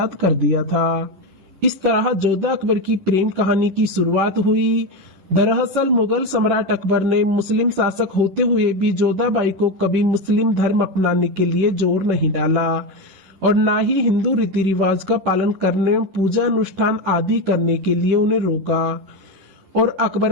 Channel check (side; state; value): left; late; 11 ms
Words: कर दिया था। इस तरह जोधा अकबर की प्रेम कहानी की शुरुआत हुई। दरअसल मुगल सम्राट अकबर ने मुस्लिम शासक होते हुए भी जोधाबाई को कभी मुस्लिम धर्म अपनाने के लिए जोर नहीं डाला और न ही हिंदू रीति रिवाज का पालन करने, पूजा अनुष्ठान आदि करने के लिए उन्हें रोका। और अकबर